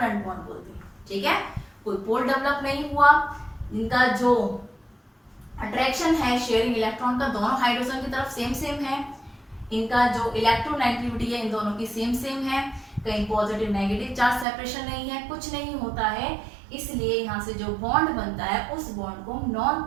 बॉन्ड बोलते हैं, ठीक है। कोई पोल डेवलप नहीं हुआ, इनका जो अट्रैक्शन है शेयरिंग इलेक्ट्रॉन का दोनों हाइड्रोजन की तरफ सेम सेम है, इनका जो इलेक्ट्रोनेगेटिविटी है इन दोनों की सेम सेम है, कहीं पॉजिटिव नेगेटिव चार्ज सेपरेशन नहीं है, कुछ नहीं होता है, इसलिए यहाँ से जो बॉन्ड बनता है उस बॉन्ड को नॉन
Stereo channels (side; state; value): left; drops out; at 14.5 s